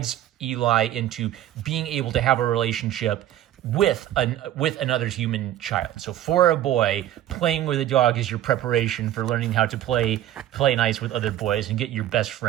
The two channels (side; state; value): left; quieter; 12.6 dB